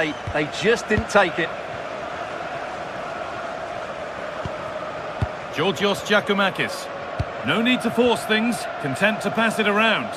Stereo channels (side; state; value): both; identical; correlation 1.00